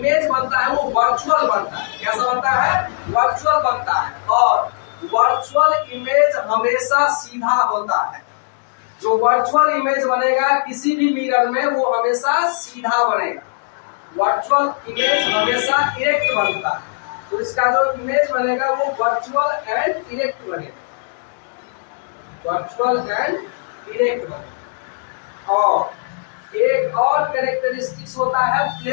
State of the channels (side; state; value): right; silent; digital silence